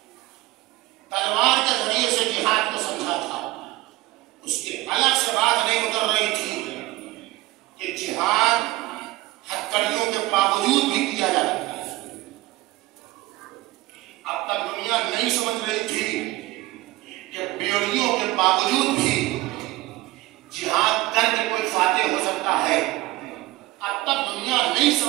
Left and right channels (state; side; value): quieter; left; 18.8 dB